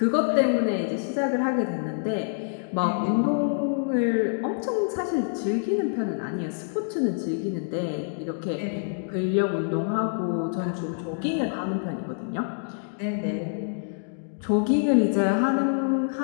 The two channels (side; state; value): right; silent; digital silence